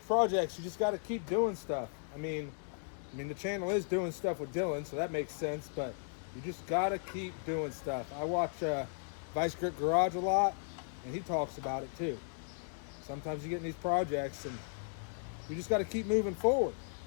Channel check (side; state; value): right; silent; digital silence